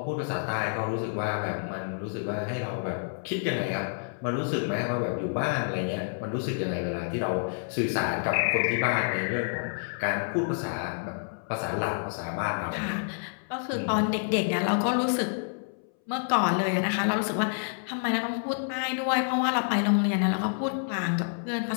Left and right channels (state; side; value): silent; right; 59 dB below the other